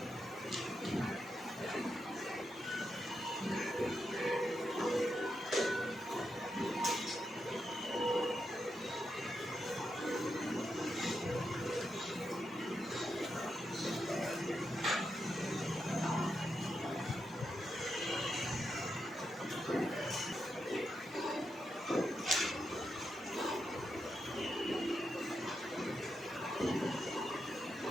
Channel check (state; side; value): normal; both; correlation 0.85